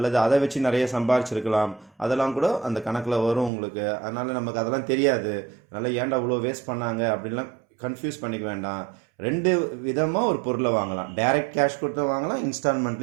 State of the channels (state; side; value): drops out; left; at 3.5 s